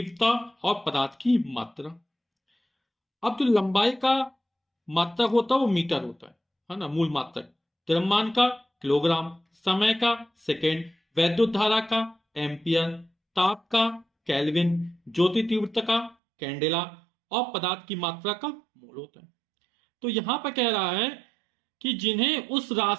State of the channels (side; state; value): left; drops out; at 16.2 s